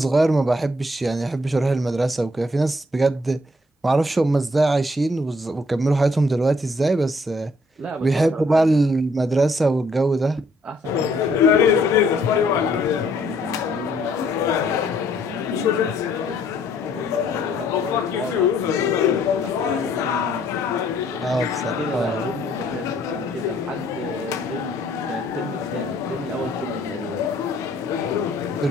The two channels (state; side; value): normal; both; correlation 0.66